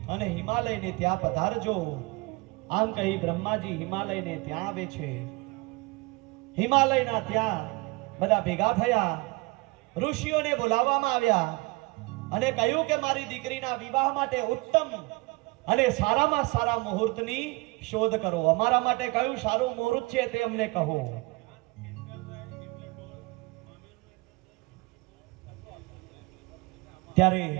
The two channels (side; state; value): left; quieter; 26.0 dB